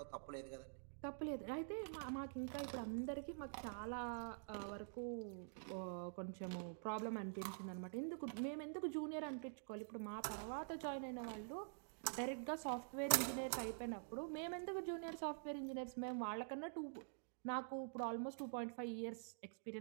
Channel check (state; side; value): silent; left; digital silence